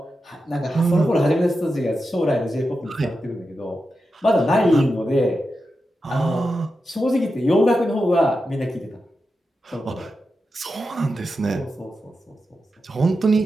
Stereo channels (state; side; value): normal; both; correlation 0.89